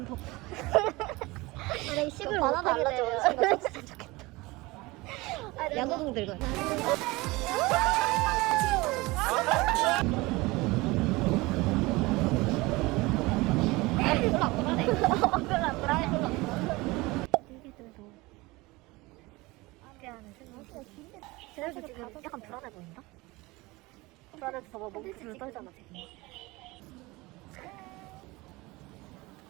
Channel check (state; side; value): quieter; left; 22.2 dB